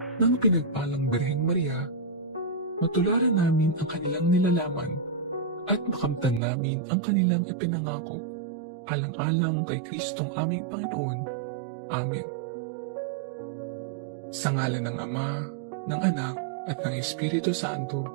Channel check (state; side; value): drops out; left; at 6.4 s